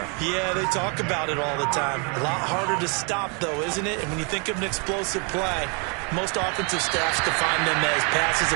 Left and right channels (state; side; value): quieter; left; 34.9 dB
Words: Yeah, they talk about it all the time. A lot harder to stop, though, isn't it? And when you think of an explosive play, most offensive staffs define them as passes